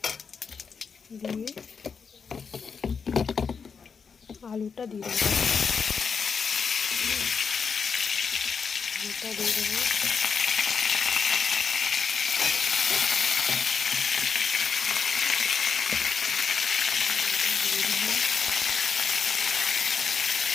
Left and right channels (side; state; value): right; quieter; 5.9 dB